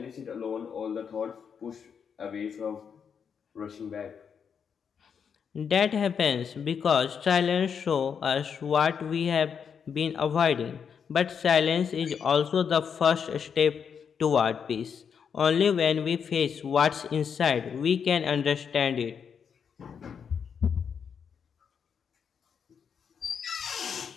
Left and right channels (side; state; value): right; quieter; 7.0 dB